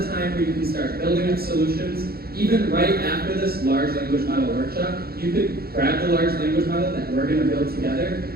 time where you can start building up solutions. Even right after this large language model workshop, you could grab the large language model that we're going to build together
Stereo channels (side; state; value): left; late; 0.45 ms